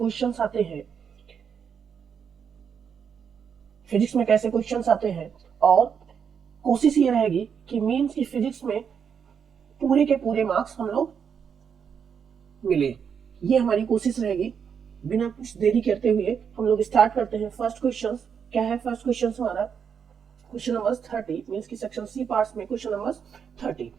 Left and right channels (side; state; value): left; quieter; 7.1 dB